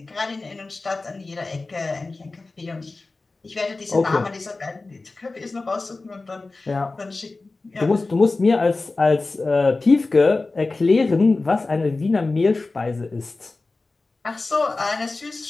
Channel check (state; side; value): quieter; right; 3.5 dB